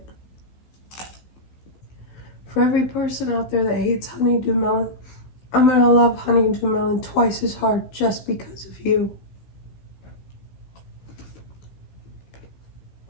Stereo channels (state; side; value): late; right; 15 ms